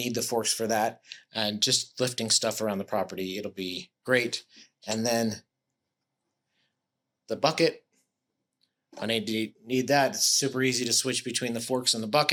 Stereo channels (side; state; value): both; identical; correlation 1.00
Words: the forks for that, and just lifting stuff around the property, it'll be great. And then the bucket, I need that. It's super easy to switch between the forks and the